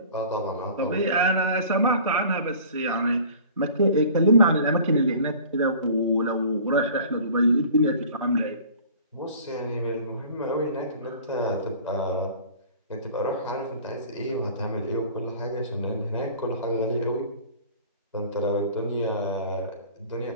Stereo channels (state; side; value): inverted; both; correlation -0.45